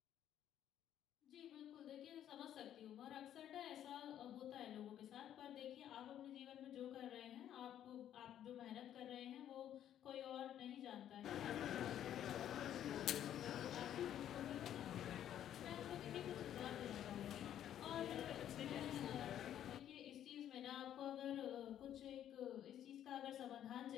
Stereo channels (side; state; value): right; quieter; 10.8 dB